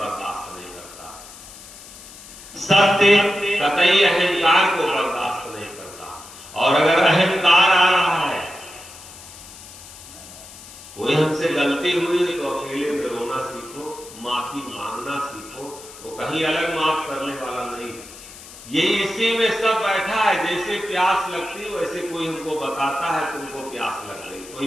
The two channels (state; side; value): noise; left; hiss, 17 dB below the sound